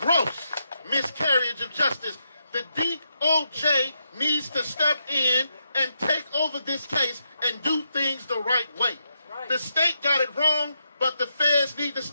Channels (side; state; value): both; inverted; correlation -0.82